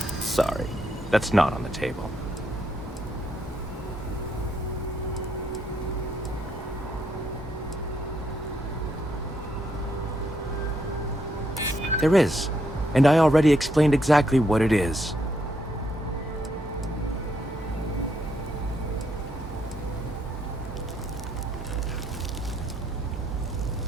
Sorry, that's not on the table. There is, and I already explained exactly what it is.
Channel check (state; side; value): normal; both; correlation 0.76